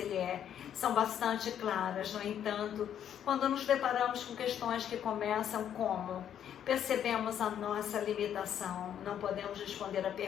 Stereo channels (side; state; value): right; quieter; 9.7 dB